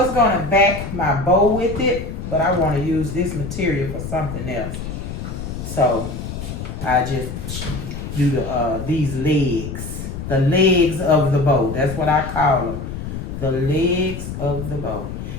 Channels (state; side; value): noise; left; rumble, 7 dB below the sound